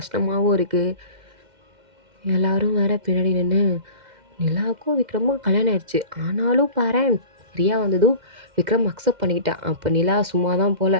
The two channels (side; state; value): left; late; 2.1 ms